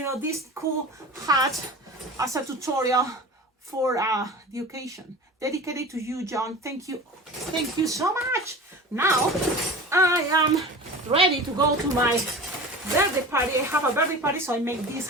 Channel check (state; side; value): normal; both; correlation 0.35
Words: this cool hat as a tutorial for the occasion. Dedicated to you, John. Thank you. Thank you so much. Now, I am ready to go to my birthday party. I have a birthday party, so I make